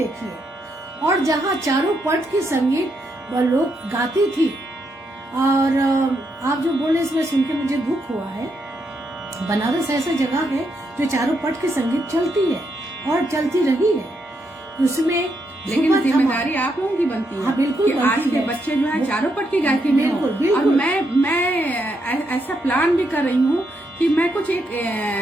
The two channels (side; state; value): both; normal; correlation 0.79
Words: और जहाँ चारों पट की संगीत लोग गाती थी, और आप जो बोले इसमें सुन के मुझे दुख हुआ है। बनारस ऐसा जगह है जो चारों पट की संगीत चलती है और चलती रही है, उसमें लेकिन जिम्मेदारी आप लोगों की बनती है। हाँ, बिल्कुल कि आज के बच्चे जो है चारों पट की गायकी में हो। और मैं ऐसा प्लान भी कर रही हूँ कि मैं कुछ एक